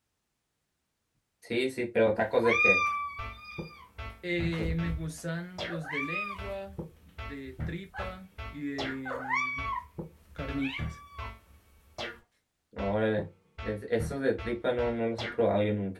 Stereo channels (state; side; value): identical; both; correlation 1.00